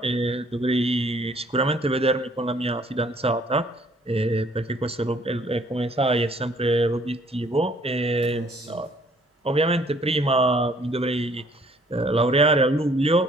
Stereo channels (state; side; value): normal; both; correlation 0.60